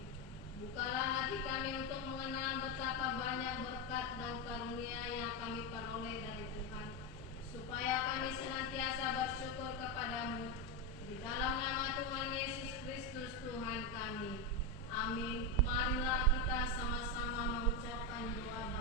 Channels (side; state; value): both; normal; correlation 0.09